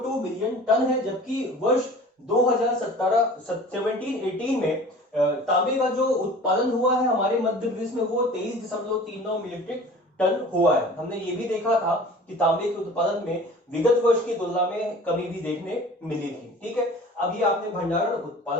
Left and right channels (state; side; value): normal; both; correlation 0.43